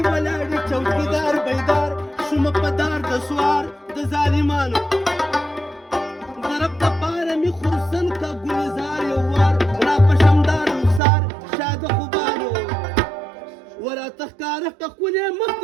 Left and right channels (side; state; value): left; drops out; at 11.0 s